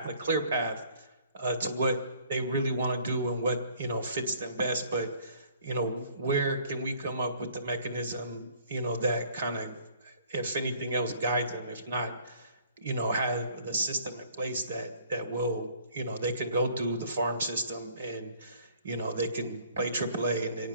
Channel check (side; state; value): both; inverted; correlation -0.58